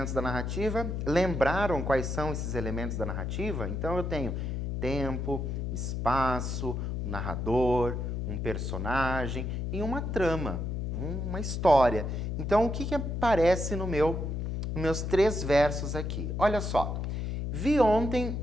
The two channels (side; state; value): left; noise; hum, 2 dB below the sound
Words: da narrativa? Lembraram quais são esses elementos da narrativa? Então eu tenho tempo, espaço, um narrador, um personagem e uma trama, uma história. Então o que aparece nos meus 3 versos aqui? Olha só. Vi ontem